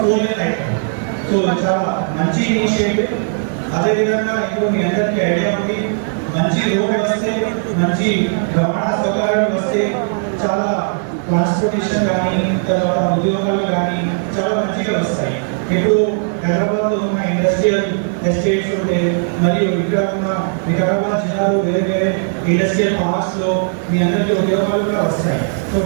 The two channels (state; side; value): silent; left; 61 dB below the other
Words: 4 లేన్ అవుతుంది. సో చాలా మంచి ఇనిషియేటివ్. అదేవిధంగా ఇప్పుడు మీ అందరికీ ఐడియా ఉంది, మంచి రోడ్ వస్తే, మంచి రవాణా సౌకర్యాలు వస్తే చాలా ట్రాన్స్పోర్టేషన్ కానీ, తర్వాత ఉద్యోగాలు కానీ చాలా మంచిగా వస్తాయి. ఇప్పుడు హైదరాబాద్లో ఉన్న ఇండస్ట్రియల్ ఎస్టేట్స్ ఉంటే, మరియు ఇక్కడ ఉన్న వికారాబాద్ జిల్లాలో వేరే వేరే ఇండస్ట్రియల్ పార్క్స్లో మీ అందరికీ ఉద్యోగాలు కూడా వస్తాయి. సో